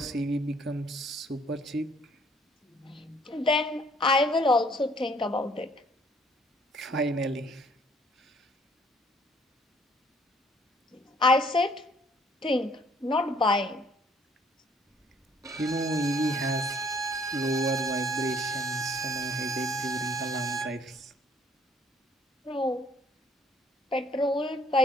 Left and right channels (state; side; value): normal; both; correlation 0.61